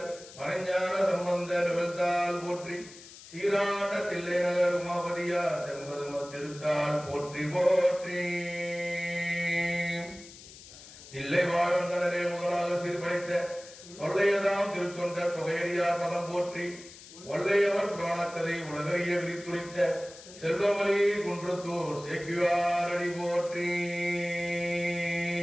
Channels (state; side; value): noise; left; hiss, 18 dB below the sound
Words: மறைஞான சம்பந்த நிகழ்த்தால் போற்றி, சீராண்ட தில்லை நகர் உமாபதியார் செம்பதும திருத்தால் போற்றி போற்றி. தில்லை வாழ்ந்தனரே முதலாக சீர்படைத்த தொல்லையதாம் திருத்தொண்ட தொகையடியார் பதம் போற்றி, ஒல்லையவர் புராணக்கதை உலகறிய விரித்துரைத்த செல்வமலி குன்றத்தூர் சேக்கிவாரடி போற்றி.